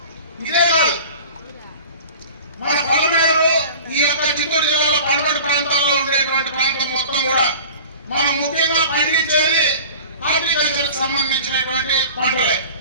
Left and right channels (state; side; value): inverted; both; correlation -0.40